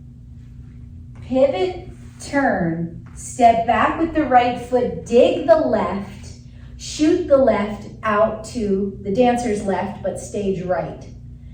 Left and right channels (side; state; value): both; identical; correlation 1.00